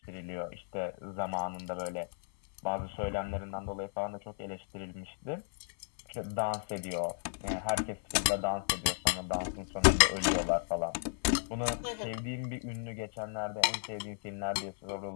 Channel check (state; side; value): silent; right; 55 dB below the other